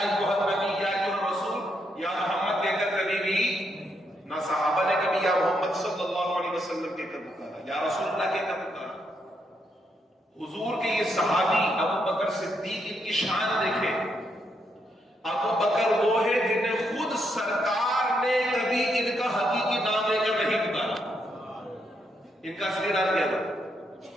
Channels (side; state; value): both; normal; correlation 0.78